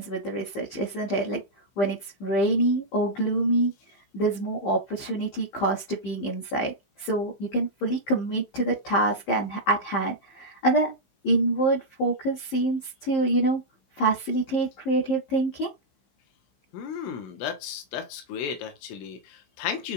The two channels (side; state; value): right; late; 15 ms